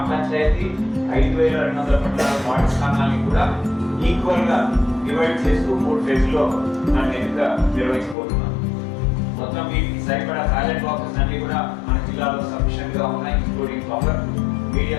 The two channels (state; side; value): drops out; right; at 8.2 s